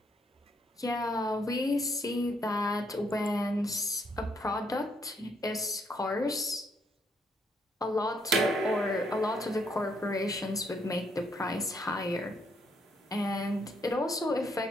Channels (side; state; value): both; normal; correlation 0.73